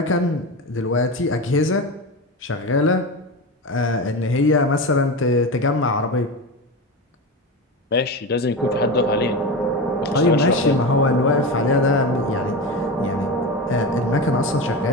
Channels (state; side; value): normal; both; correlation 0.22